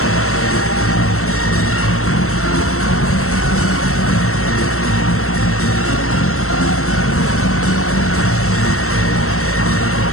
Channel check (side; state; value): right; late; 0.63 ms